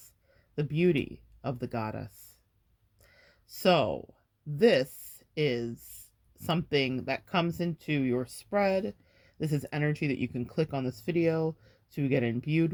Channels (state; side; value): identical; both; correlation 1.00